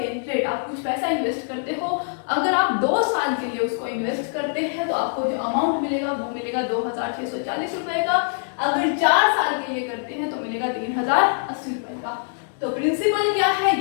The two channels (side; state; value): right; silent; digital silence